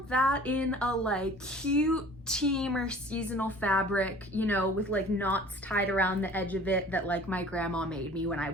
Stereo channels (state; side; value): normal; both; correlation 0.47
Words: that in a like cute team or seasonal fabric, you know, with like knots tied around the edge of it that like my grandma made me when I